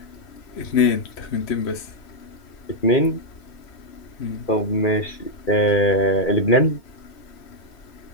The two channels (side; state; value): right; late; 2.4 ms